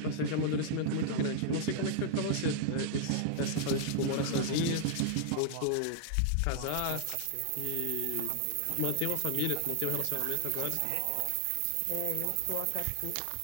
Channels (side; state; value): both; different; correlation -0.01